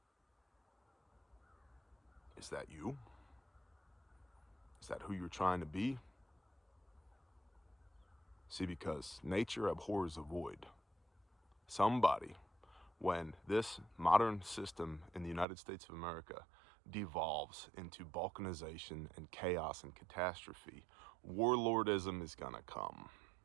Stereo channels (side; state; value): left; drops out; at 15.5 s